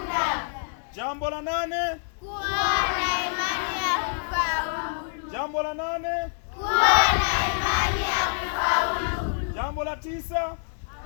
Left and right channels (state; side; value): silent; right; digital silence